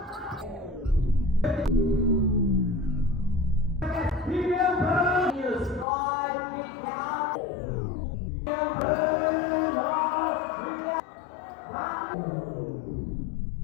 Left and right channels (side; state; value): right; drops out; at 5.9 s